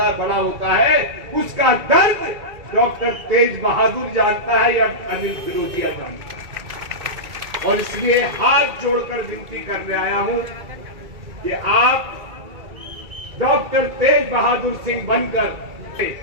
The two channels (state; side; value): late; left; 2.3 ms